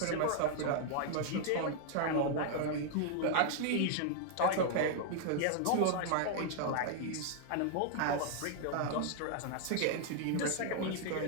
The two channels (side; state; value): both; different; correlation 0.00